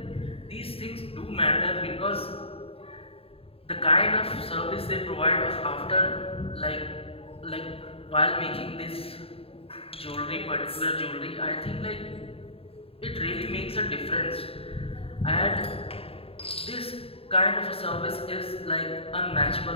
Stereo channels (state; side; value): late; right; 0.27 ms